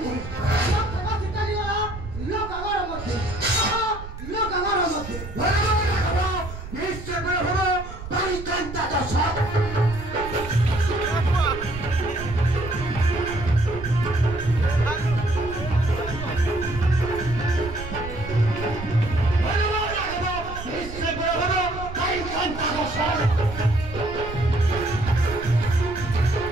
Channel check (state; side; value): noise; right; rumble, 11 dB below the sound